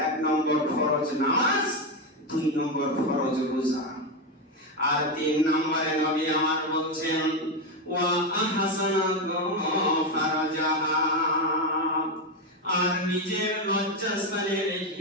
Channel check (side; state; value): both; normal; correlation 0.10